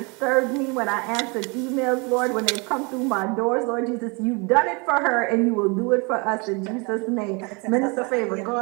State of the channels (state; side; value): quieter; left; 30.3 dB